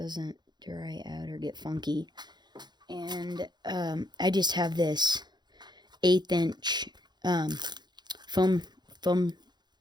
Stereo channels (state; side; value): late; left; 0.21 ms